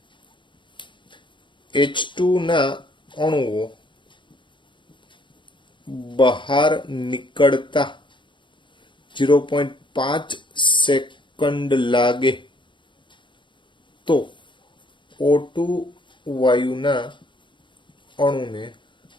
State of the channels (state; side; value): late; right; 0.23 ms